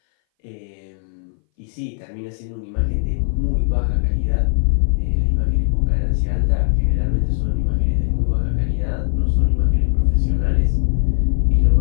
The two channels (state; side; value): silent; right; 61 dB below the other